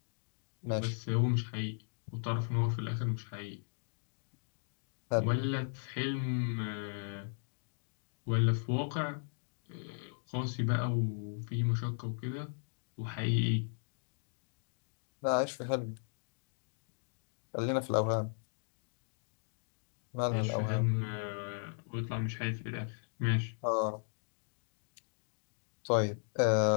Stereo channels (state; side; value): silent; right; digital silence